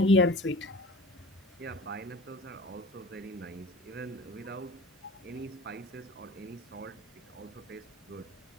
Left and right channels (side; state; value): both; normal; correlation 0.41